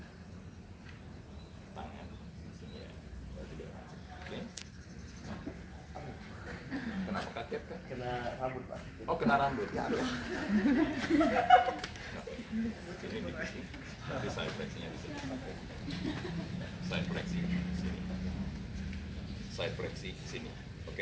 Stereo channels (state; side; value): identical; both; correlation 1.00